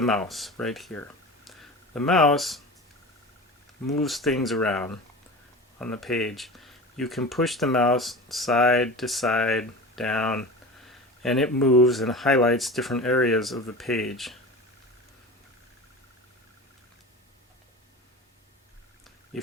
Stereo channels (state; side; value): normal; both; correlation 0.32